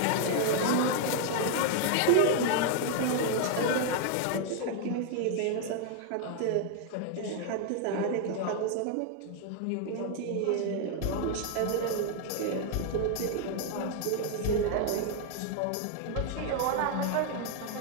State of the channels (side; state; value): both; different; correlation 0.00